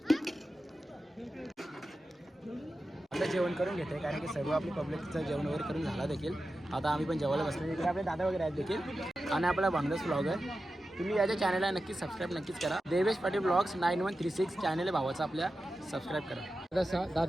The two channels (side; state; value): both; normal; correlation 0.92